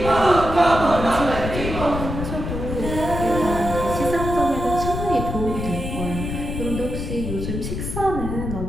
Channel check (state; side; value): noise; left; rumble, 5 dB below the sound